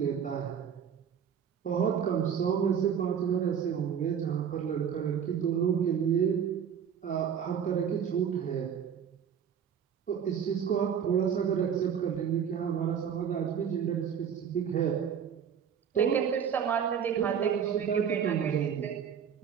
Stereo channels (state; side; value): quieter; left; 8.0 dB